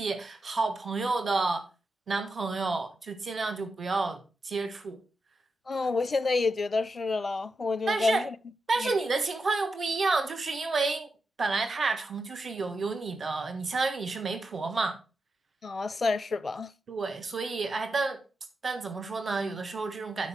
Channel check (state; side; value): normal; both; correlation 0.87